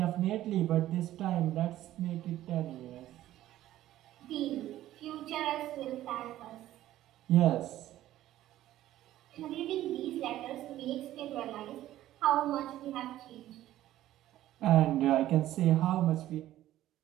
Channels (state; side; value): quieter; left; 13.9 dB